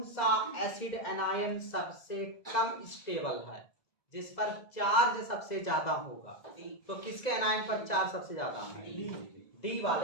सा एसिड एनायन सबसे कम स्टेबल है, जिस पर चार्ज सबसे ज्यादा होगा, तो किसके एनायन पर चार्ज सबसे ज्यादा है, डी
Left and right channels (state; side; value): late; right; 2.0 ms